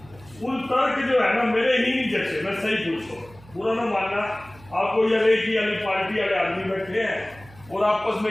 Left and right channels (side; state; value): right; noise; hum, 23 dB below the sound